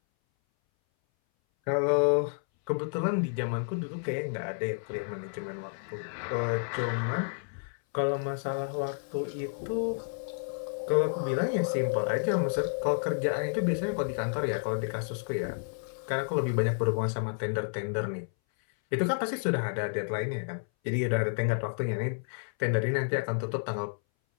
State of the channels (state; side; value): silent; right; 58 dB below the other